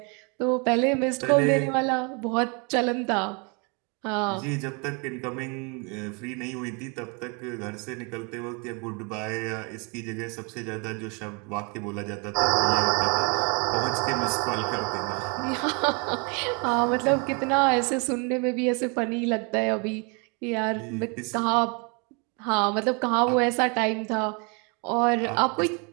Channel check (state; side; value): quieter; left; 33.6 dB